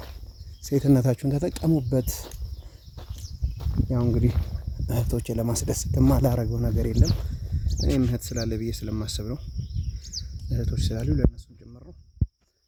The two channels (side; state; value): both; identical; correlation 1.00